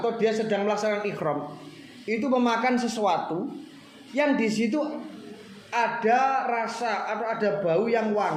dia sedang melaksanakan ikhram, itu memakan sesuatu yang di situ ada rasa atau ada bau yang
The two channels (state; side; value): identical; both; correlation 1.00